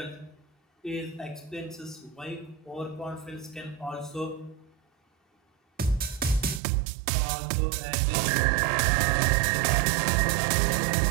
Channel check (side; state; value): left; drops out; at 6.6 s